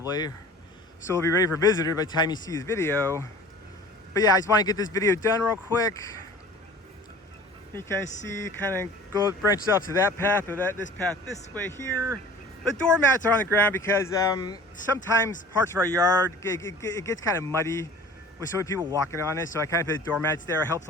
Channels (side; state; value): both; normal; correlation 0.44